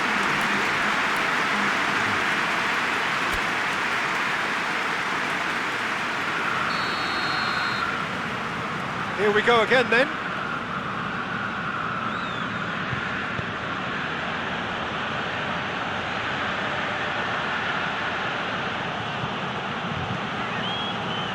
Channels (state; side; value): identical; both; correlation 1.00